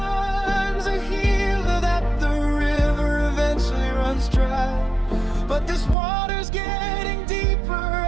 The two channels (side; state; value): left; drops out; at 6.0 s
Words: a healer, that the river eventually runs dry, but this water's getting deeper